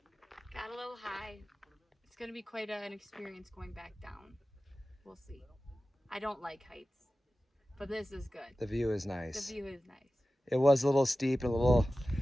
Got a little high. It's going to be quite an experience going back down. We'll see. I don't like heights, but this is good. The view is nice. The view is nice. It was a little steep and a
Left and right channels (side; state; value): both; normal; correlation 0.95